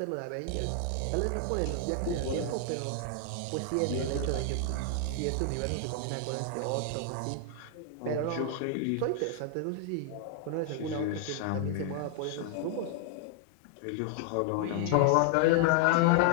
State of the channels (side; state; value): both; different; correlation 0.00